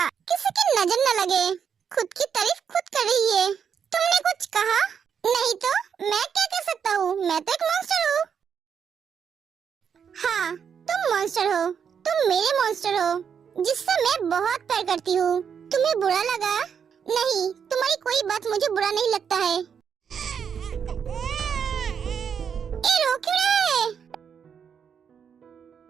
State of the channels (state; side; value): quieter; left; 7.3 dB